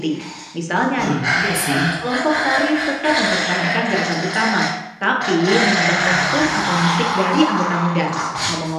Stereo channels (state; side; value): identical; both; correlation 1.00